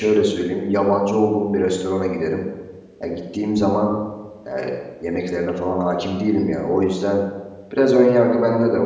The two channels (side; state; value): both; identical; correlation 1.00